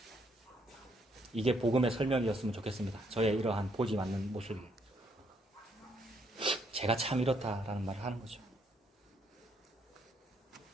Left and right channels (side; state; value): both; normal; correlation 0.71